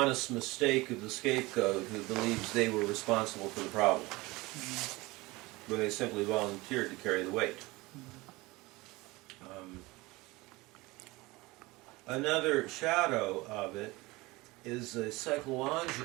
mistake of the scapegoat who believes they were responsible for the problem, when they simply volunteered to carry the weight. Another shadow of it is a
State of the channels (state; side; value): quieter; left; 21.9 dB